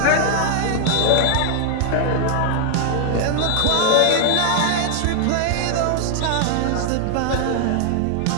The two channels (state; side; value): different; both; correlation 0.00